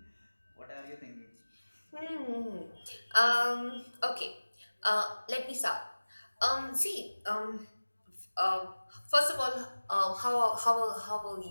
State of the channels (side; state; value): both; inverted; correlation -1.00